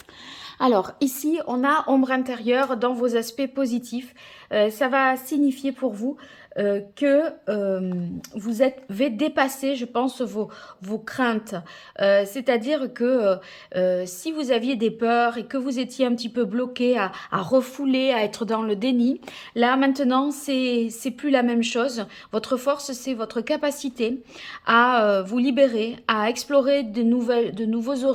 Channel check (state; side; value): identical; both; correlation 1.00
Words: Alors, ici, on a ombre intérieure dans vos aspects positifs. Ça va signifier pour vous que vous avez dépassé, je pense, vos craintes. C'est-à-dire que si vous aviez des peurs et que vous étiez un petit peu bloqué à refouler, à être dans le déni, là, maintenant, c'est plus la même chose. Votre force, c'est votre capacité à vous libérer, à explorer de nouveaux